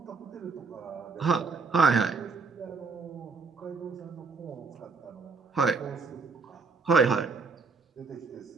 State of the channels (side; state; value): left; quieter; 4.7 dB